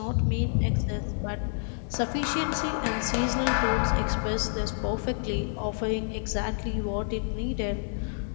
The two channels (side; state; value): right; silent; digital silence